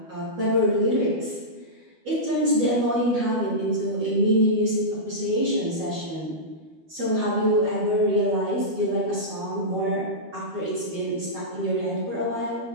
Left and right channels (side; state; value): left; late; 12 ms